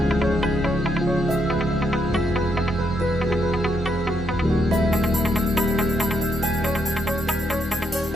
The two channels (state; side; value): normal; both; correlation 0.78